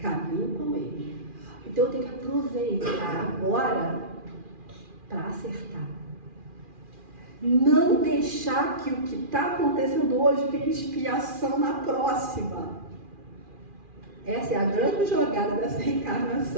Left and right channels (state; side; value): late; left; 2.4 ms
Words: com ele. Então eu tenho que aproveitar agora para acertar. Não deixar que o que está acontecendo hoje tenha expiação na próxima. Essa é a grande jogada dessa